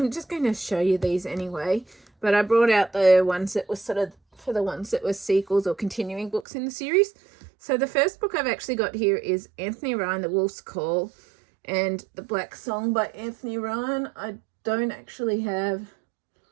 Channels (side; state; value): left; drops out; at 6.5 s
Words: just going to show you these anyway, but I brought out the ones that were sort of for the ones that were sequels or continuing books in the series. So the first book I've actually got here is Anthony Ryan, The Wolf's Call, and The Black Song by Anthony Ryan. I don't actually have